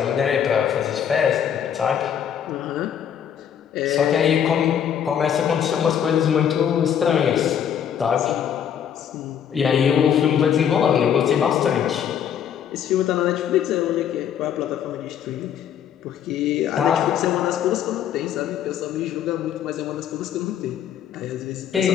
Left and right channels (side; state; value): right; quieter; 8.9 dB